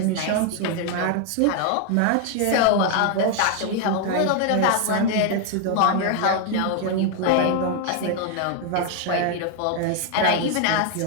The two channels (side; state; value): both; different; correlation 0.00